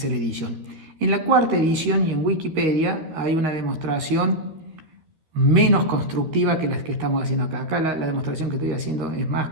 edición. En la cuarta edición y en Wikipedia hay una demostración menos constructiva que las que estamos haciendo acá. Acá la demostración que estoy haciendo es más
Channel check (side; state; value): left; late; 12 ms